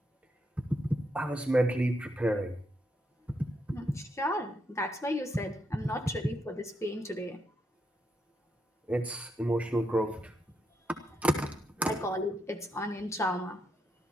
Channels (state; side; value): normal; both; correlation 0.80